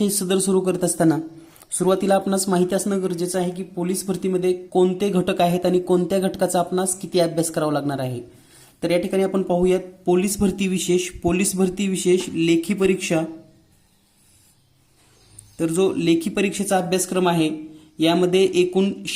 सदर सुरू करत असताना सुरुवातीला आपणास माहिती असणं गरजेचं आहे की पोलीस भरतीमध्ये कोणते घटक आहेत आणि कोणत्या घटकाचा आपणास किती अभ्यास करावा लागणार आहे। तर या ठिकाणी आपण पाहूयात पोलीस भरती विशेष, पोलीस भरती विशेष लेखी परीक्षा। तर जो लेखी परीक्षेचा अभ्यासक्रम आहे यामध्ये एकूण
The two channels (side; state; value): both; identical; correlation 1.00